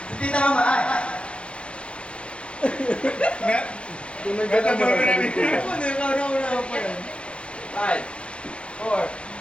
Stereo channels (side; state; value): right; late; 0.059 ms